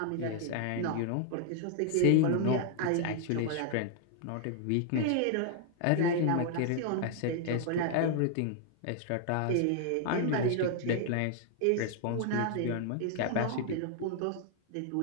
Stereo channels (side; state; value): both; different; correlation 0.00